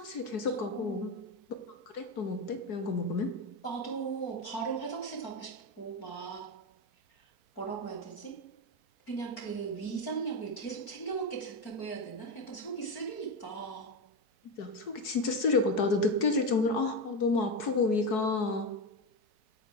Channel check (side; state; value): right; late; 4.7 ms